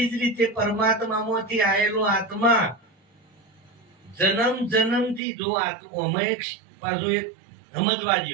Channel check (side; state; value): left; drops out; at 5.2 s